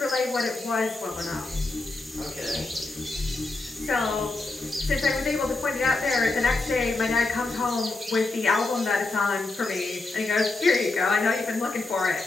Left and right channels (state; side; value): quieter; right; 3.3 dB